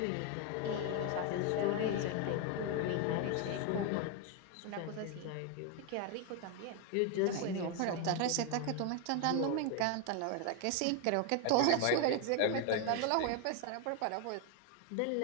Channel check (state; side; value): different; both; correlation 0.01